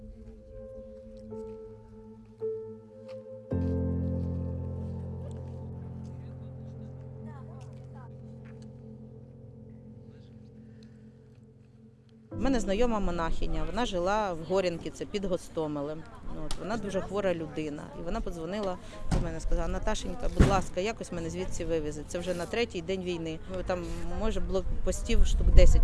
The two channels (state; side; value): identical; both; correlation 1.00